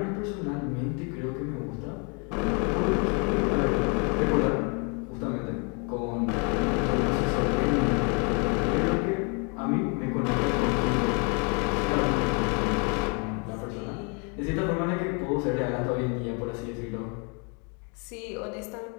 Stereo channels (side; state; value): right; quieter; 35.0 dB